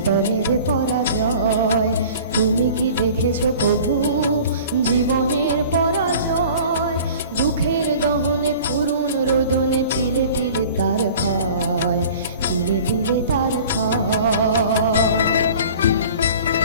পরাজয়। তুমি কি দেখেছো কভু জীবনের পরাজয়? দুঃখের দহনে করুণ রোদনে তিলে তিলে তার ক্ষয়, তিলে তিলে তার ক্ষয়।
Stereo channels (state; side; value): inverted; both; correlation -0.45